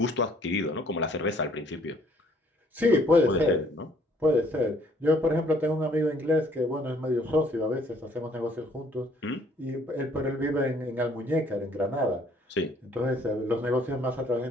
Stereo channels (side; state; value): both; normal; correlation 0.62